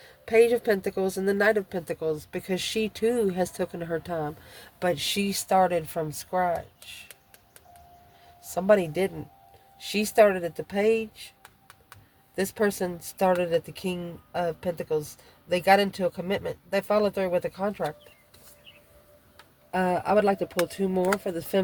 Page of Pentacles and the Knight of Pentacles, because she too has taken her time. But she started from scratch. Somebody didn't. She started at the Page. This person started at the King of Pentacles. They got into a commitment. They followed through with a contract. I would like to pull 2 more for the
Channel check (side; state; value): both; identical; correlation 1.00